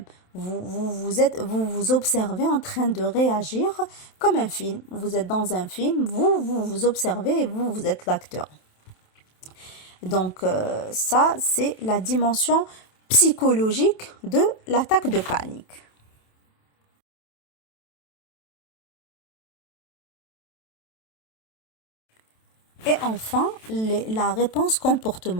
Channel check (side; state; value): right; late; 27 ms